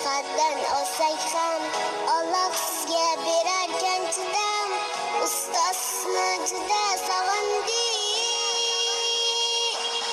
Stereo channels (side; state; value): both; identical; correlation 1.00